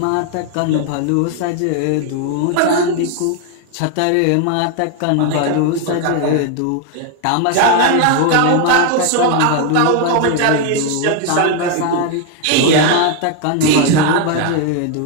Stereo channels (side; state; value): both; different; correlation 0.01